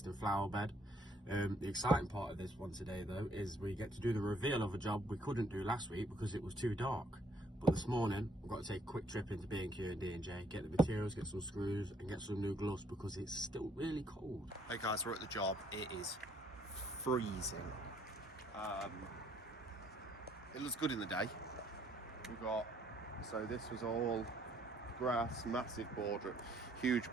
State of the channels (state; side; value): normal; both; correlation 0.65